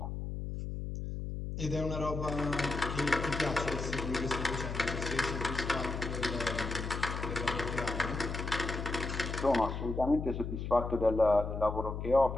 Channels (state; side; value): noise; left; hum, 5 dB below the sound